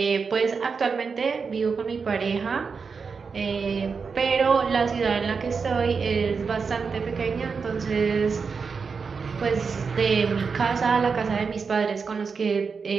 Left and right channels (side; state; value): left; quieter; 5.3 dB